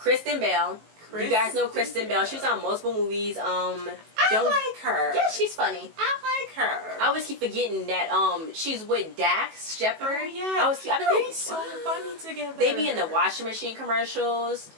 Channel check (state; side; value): late; left; 19 ms